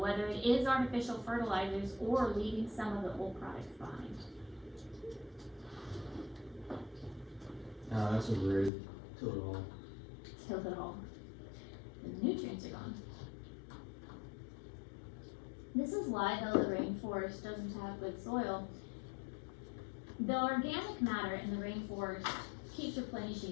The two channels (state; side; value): drops out; right; at 8.7 s